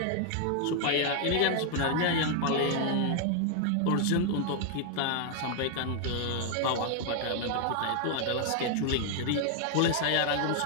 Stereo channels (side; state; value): both; different; correlation 0.00